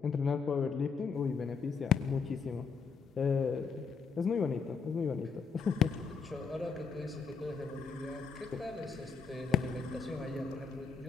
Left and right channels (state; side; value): quieter; right; 5.5 dB